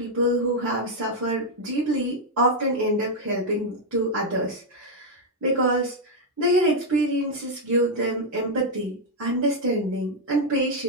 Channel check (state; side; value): normal; both; correlation 0.00